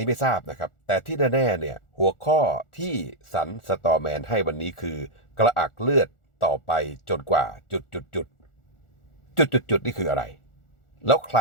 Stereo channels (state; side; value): late; right; 1.4 ms